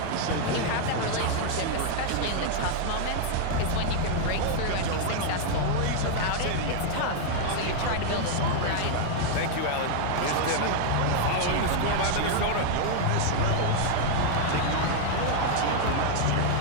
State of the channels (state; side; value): different; both; correlation 0.00